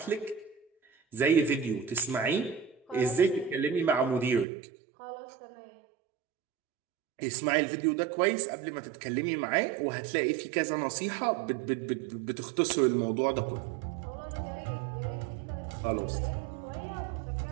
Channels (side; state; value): left; drops out; at 4.5 s